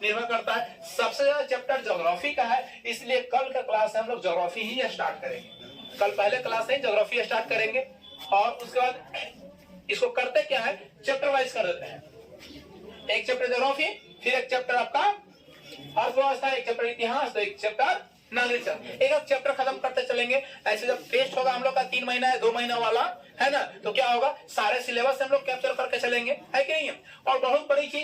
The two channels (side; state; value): both; identical; correlation 1.00